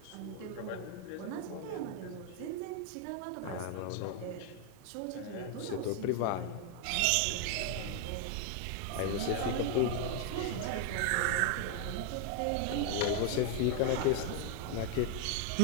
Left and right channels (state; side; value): different; both; correlation 0.00